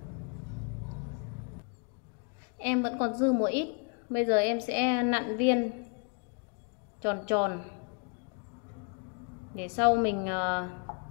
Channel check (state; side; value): quieter; right; 38.7 dB